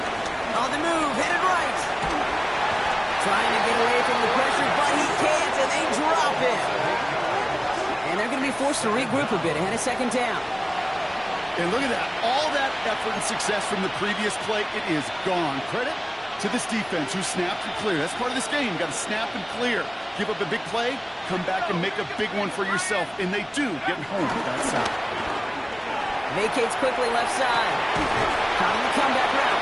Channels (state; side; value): identical; both; correlation 1.00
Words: On the move, headed right. Trying to get away from the pressure, but he can't, and they drop it. And they're going to be forced to regroup a bit ahead of second down. And look at that. All that effort and success from the previous play, it is gone. Credit to this defense who snapped and cleared. That's part of this game. You got to snap and clear. Give up a big play, come back and make a big one for yourself. And they do get home with that side. Vacates quickly left side. Caught on the comeback